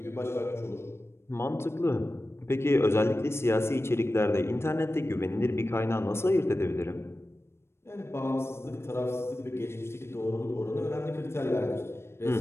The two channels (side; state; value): right; late; 0.12 ms